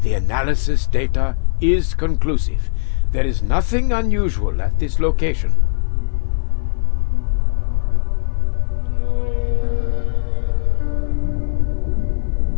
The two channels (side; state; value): right; silent; 55 dB below the other